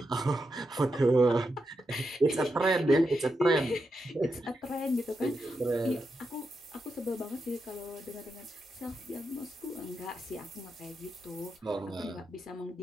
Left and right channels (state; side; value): normal; both; correlation 0.86